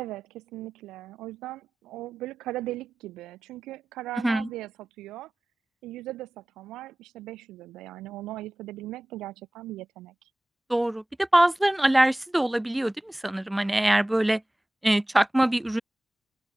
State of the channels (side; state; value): both; normal; correlation 0.97